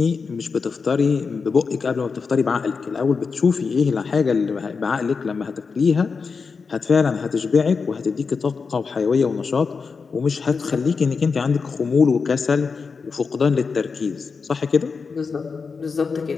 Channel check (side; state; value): right; quieter; 5.1 dB